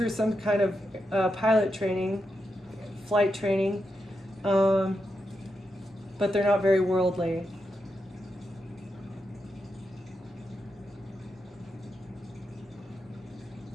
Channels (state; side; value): normal; both; correlation 0.86